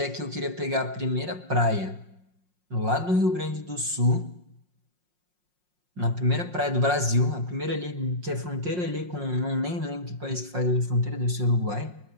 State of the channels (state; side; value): late; left; 5.6 ms